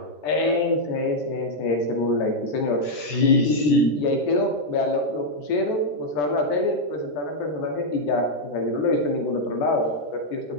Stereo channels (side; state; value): right; late; 14 ms